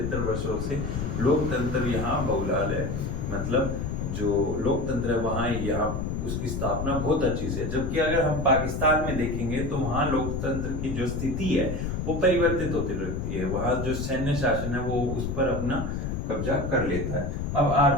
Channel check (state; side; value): noise; left; rumble, 3 dB below the sound